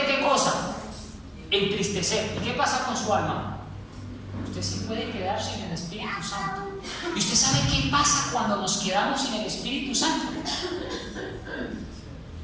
¿qué cosa? Entristecer. ¿Y qué pasa con su alma? Usted sí puede quedar sin el Espíritu Santo. ¿Y usted sabe qué pasa cuando nos quedamos sin el Espíritu Santo?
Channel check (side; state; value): both; identical; correlation 1.00